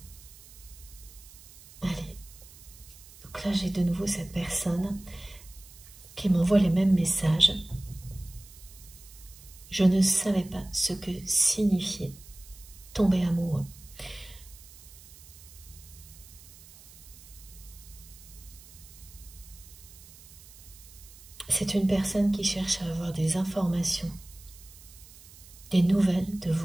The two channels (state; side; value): noise; right; hiss, 20 dB below the sound